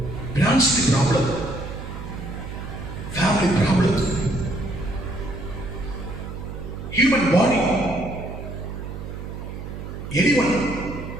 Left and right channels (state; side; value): noise; right; hum, 9 dB below the sound